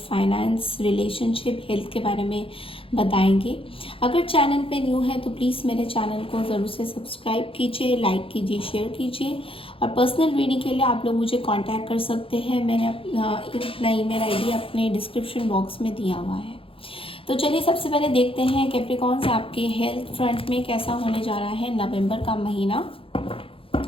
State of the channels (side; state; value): right; late; 0.26 ms